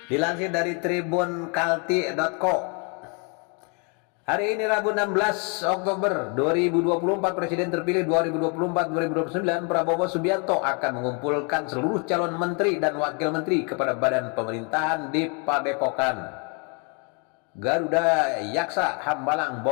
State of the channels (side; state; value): right; quieter; 35.5 dB